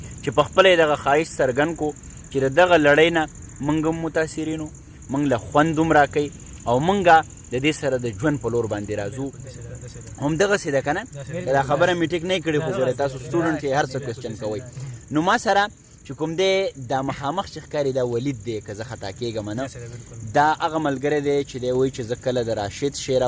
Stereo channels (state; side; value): identical; both; correlation 1.00